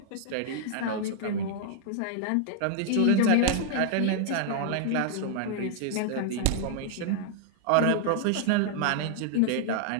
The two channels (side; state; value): both; different; correlation 0.00